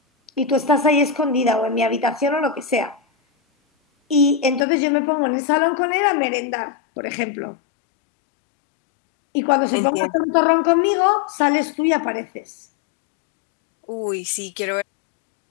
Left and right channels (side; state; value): right; drops out; at 4.7 s